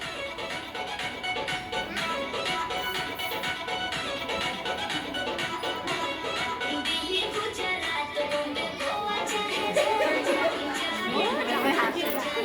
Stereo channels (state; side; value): identical; both; correlation 1.00